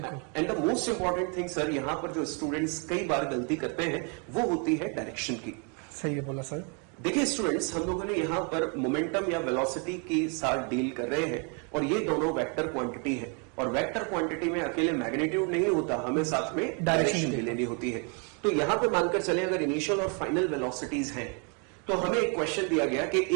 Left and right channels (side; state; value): left; quieter; 36.7 dB